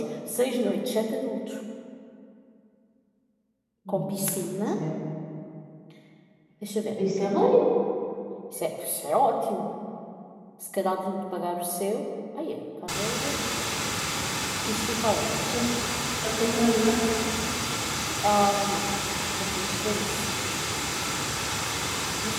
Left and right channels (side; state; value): both; identical; correlation 1.00